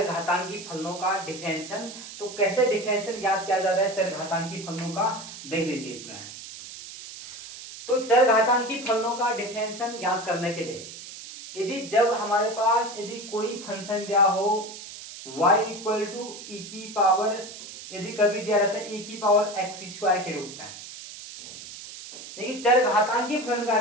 फलनों का डिफरेंशियल। तो कैसे डिफरेंशियल ज्ञात किया जाता है चरघातांकी फलनों का, देख लीजिए इसमें। तो चरघातांकी फलनों का डिफरेंशियल ज्ञात करने के लिए यदि जब हमारे पास यदि कोई फंक्शन दिया हो y इक्वल टू ई की पावर, यदि कभी दिया रहता है e की पावर x स्क्वायर के रूप में, देखिए चरघातांकी फलन का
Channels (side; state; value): right; noise; hiss, 13 dB below the sound